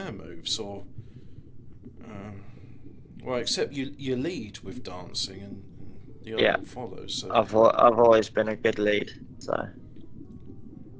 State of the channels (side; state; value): both; identical; correlation 1.00